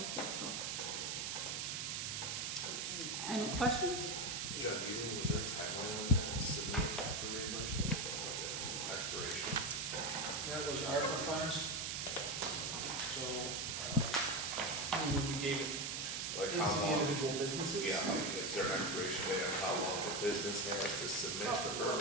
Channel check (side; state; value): right; noise; hiss, 2 dB below the sound